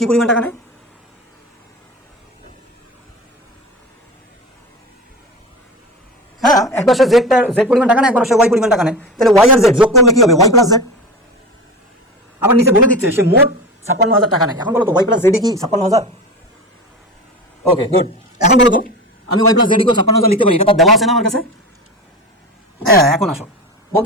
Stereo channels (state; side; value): normal; both; correlation 0.27